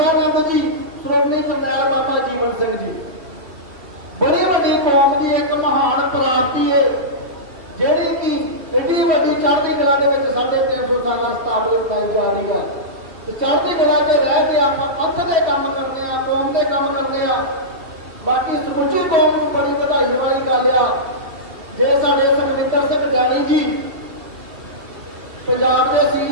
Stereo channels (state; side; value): late; left; 2.6 ms